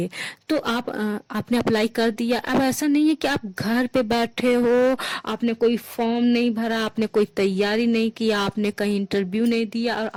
तो आपने अप्लाई कर दिया। अब ऐसा नहीं है कि आप घर पे बैठे हो, आपने कोई फॉर्म नहीं भरा, आपने कोई तैयारी नहीं किया, आपने कहीं इंटरव्यू नहीं दिया और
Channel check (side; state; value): both; identical; correlation 1.00